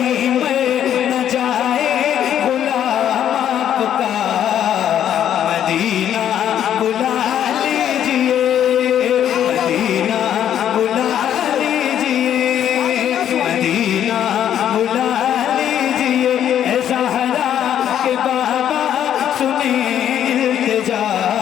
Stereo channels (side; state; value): right; quieter; 10.2 dB